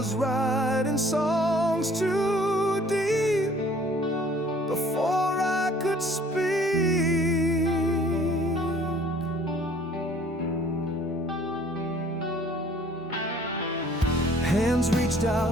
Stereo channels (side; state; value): both; normal; correlation 0.55